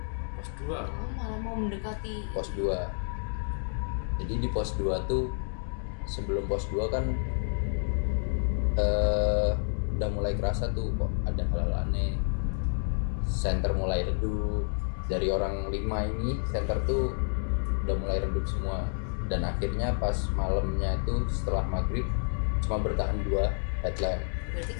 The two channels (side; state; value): right; silent; digital silence